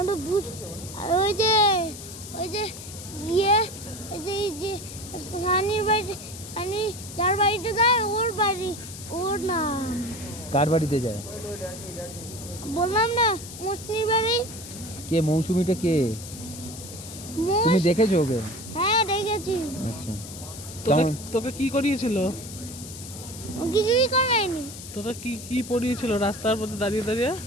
বুঝ ওই যে ইয়ে এই যে সানির বাড়ি সানি যার বাড়িতে যায় ওর বাড়ি ওর নাম। কার বাড়িতে যায়? বললাম না মুসলিম বাড়ি। কে মৌসুমীটা কে? তুমি দেখেছো ওকে? হ্যাঁ দেখেছি। আচ্ছা তোকে কি করিয়েছিল? ও কিছুই করায়নি। তোকে কি কি পড়িয়েছিল রাস্তার মধ্যে দাঁড়িয়ে দাঁড়িয়ে?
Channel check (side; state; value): left; noise; hiss, 13 dB below the sound